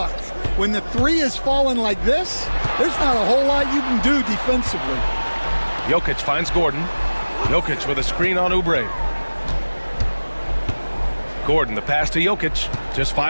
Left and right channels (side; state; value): both; inverted; correlation -1.00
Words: when the three is falling like this, there's not a whole lot you can do defensively. Jokic finds Gordon. Jokic with a screen on Oubre. Gordon, the pass to Jokic. Just